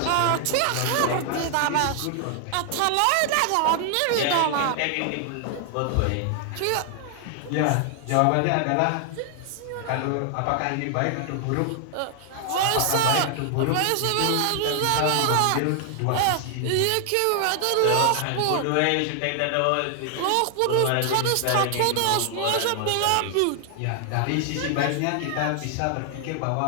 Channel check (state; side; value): different; both; correlation 0.00